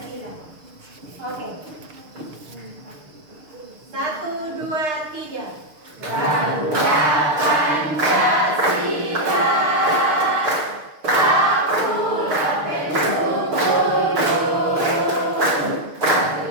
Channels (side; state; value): left; late; 6.6 ms